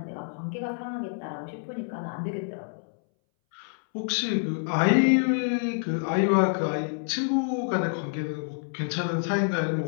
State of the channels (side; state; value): right; silent; 60 dB below the other